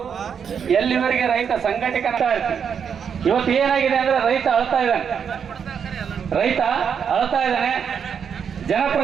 ಎಲ್ಲಿವರೆಗೆ ರೈತ ಸಂಘಟಕ ಇರ್ತೀವಿ. ಇವತ್ತು ಏನಾಗಿದೆ ಅಂದ್ರೆ ರೈತ ಅಳ್ತಾ ಇದ್ದಾನೆ,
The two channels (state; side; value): quieter; left; 7.3 dB